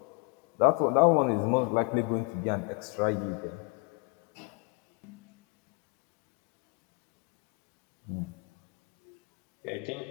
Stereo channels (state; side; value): quieter; right; 29.1 dB